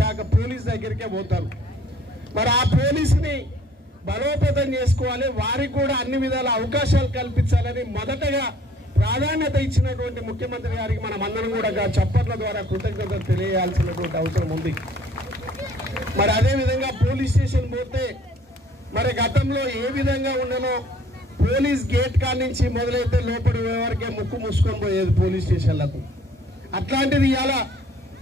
పోలీస్ దగ్గరికే పోతారు. మరి ఆ పోలీసుని బలోపేతం చేసుకోవాలి, వారికి కూడా అన్ని విధాల అవకాశాలు కల్పించాలని మొదటగా ప్రాధాన్యత ఇచ్చినటువంటి ముఖ్యమంత్రి గారికి మనం అందరం కూడా చప్పట్ల ద్వారా కృతజ్ఞతలు తెలియాల్సినటువంటి అవసరం ఉంది. మరి అదేవిధంగా పోలీస్ స్టేషన్ పోతే మరి గతంలో ఏ విధంగా ఉండనో పోలీస్ గేట్ కాడ నుంచి మొదలైతే లోపలి వరకే ముక్కు మూసుకొని పోయేది పోలీస్ స్టేషన్లకు. అట్లాంటిది ఇవాళ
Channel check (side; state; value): both; normal; correlation 0.57